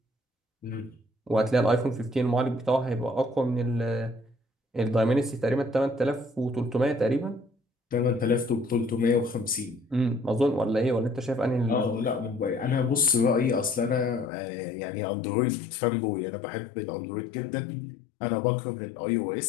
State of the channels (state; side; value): drops out; right; at 14.3 s